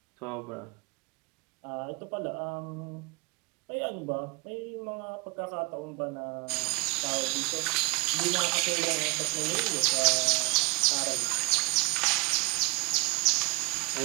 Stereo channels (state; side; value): quieter; left; 29.8 dB